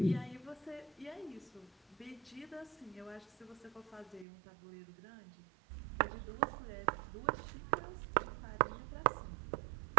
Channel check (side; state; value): left; drops out; at 4.2 s